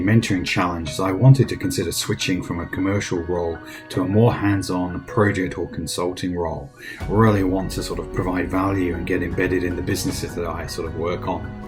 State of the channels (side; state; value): both; identical; correlation 1.00